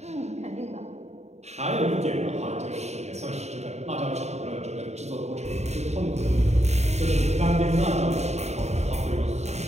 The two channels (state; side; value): late; left; 0.32 ms